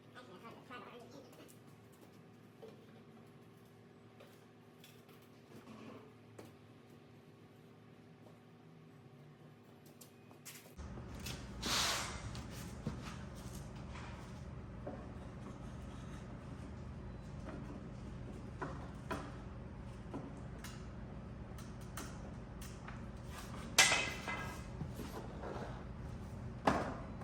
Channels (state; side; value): identical; both; correlation 1.00